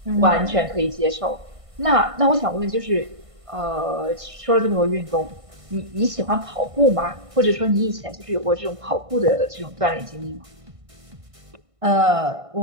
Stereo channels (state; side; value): late; left; 1.5 ms